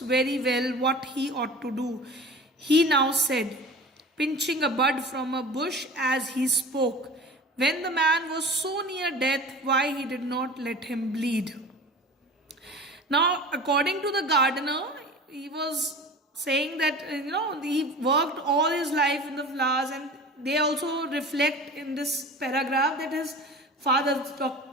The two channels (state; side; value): normal; both; correlation 0.37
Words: well what he ought to do, he now said, pinching a bud from a bush as he spoke. When the man was so near death, why he did not let him bleed. Now, according to the gardener, he was saying that, he worked all his life in the flowers, and they also reflect in this paragraph that his father,